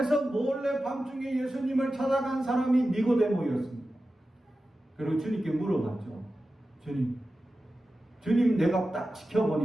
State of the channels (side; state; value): both; normal; correlation 0.93